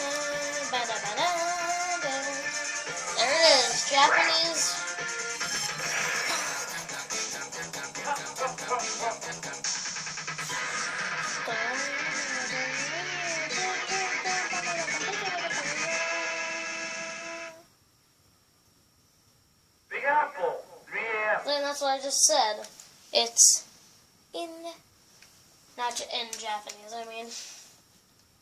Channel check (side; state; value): both; identical; correlation 1.00